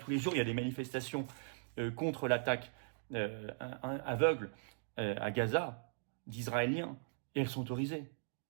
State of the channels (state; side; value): silent; left; digital silence